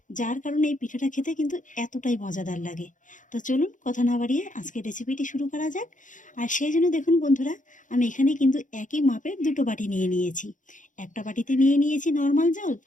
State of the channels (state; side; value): late; right; 0.37 ms